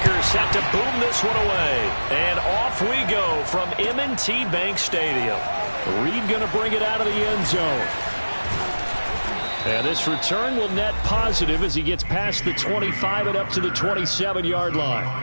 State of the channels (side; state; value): both; inverted; correlation -1.00